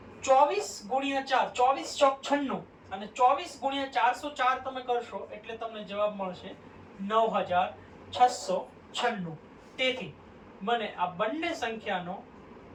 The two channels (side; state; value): both; identical; correlation 1.00